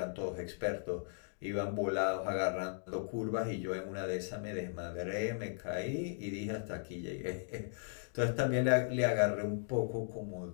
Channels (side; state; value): right; silent; digital silence